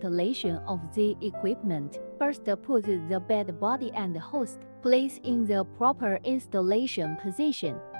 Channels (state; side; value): inverted; both; correlation -1.00